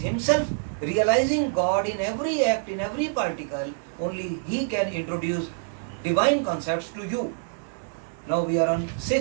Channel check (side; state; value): left; silent; digital silence